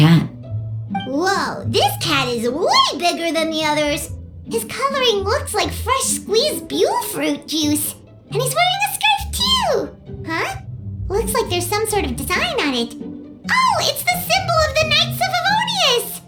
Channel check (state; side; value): identical; both; correlation 1.00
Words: Whoa, this cat is way bigger than the others. His coloring looks like fresh squeezed Buell fruit juice. And he's wearing a scarf too! Huh? Looks like there's some sort of design on it. Oh, it's the symbol of the Knights of Favonius!